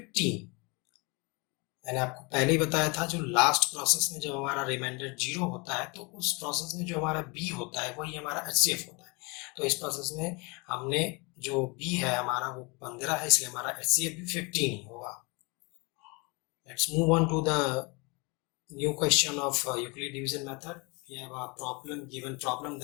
मैंने आपको पहले ही बताया था, जो last process में जब हमारा reminder 0 होता है तो उस प्रोसेस में जो हमारा B होता है वही हमारा HCF होता है। तो इस प्रोसेस में हमने जो B है हमारा वो 15 है, इसलिए हमारा HCF भी 15 ही होगा। Let's move on to the new question of Euclid division method. We have a given problem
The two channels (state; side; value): quieter; right; 29.2 dB